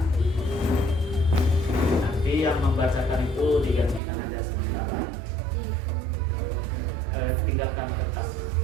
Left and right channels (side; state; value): left; drops out; at 4.0 s